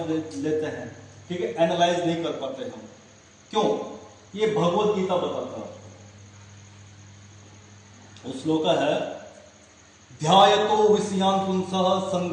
हैं, ठीक है, एनालाइज नहीं कर पाते हम। क्यों? ये भगवत गीता बताता है। उस श्लोक है, ध्यायतो विषयान् पुंसः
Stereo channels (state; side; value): identical; both; correlation 1.00